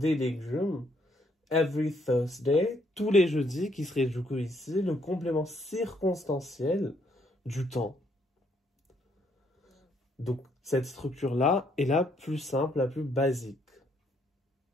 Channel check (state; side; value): normal; both; correlation 0.70